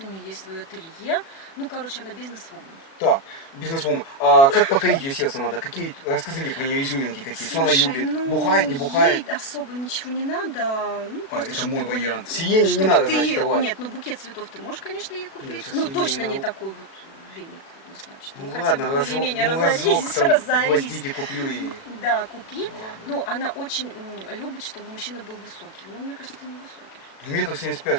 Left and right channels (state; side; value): late; right; 37 ms